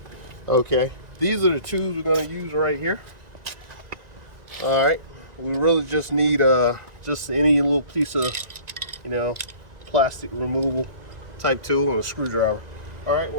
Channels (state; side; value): late; left; 1.9 ms